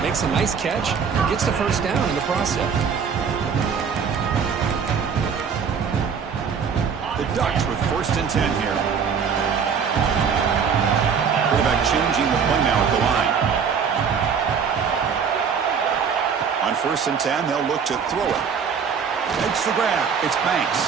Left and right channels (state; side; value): quieter; left; 6.5 dB